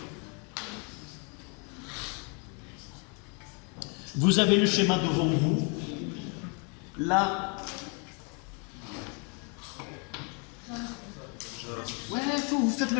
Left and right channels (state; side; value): quieter; right; 35.8 dB